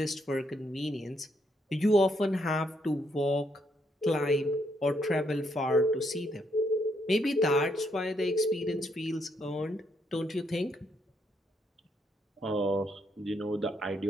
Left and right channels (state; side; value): normal; both; correlation 0.75